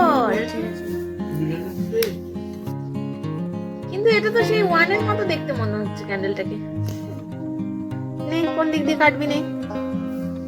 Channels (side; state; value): both; identical; correlation 1.00